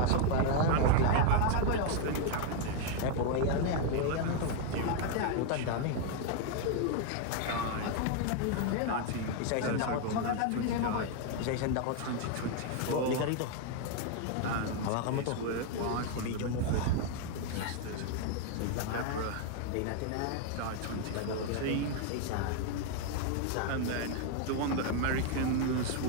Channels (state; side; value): different; both; correlation 0.01